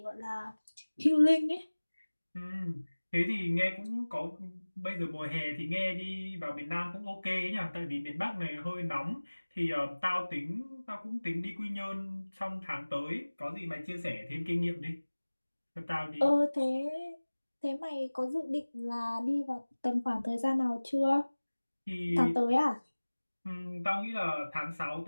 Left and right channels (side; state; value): both; inverted; correlation -1.00